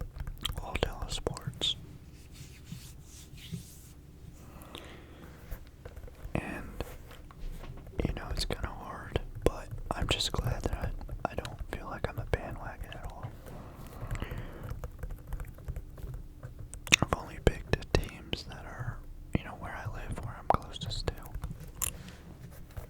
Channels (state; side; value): identical; both; correlation 1.00